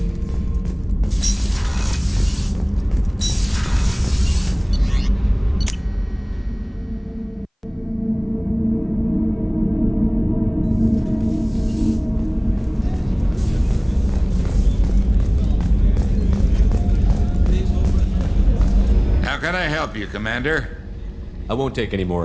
How can I help you, Commander? I won't take any more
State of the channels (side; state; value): both; identical; correlation 1.00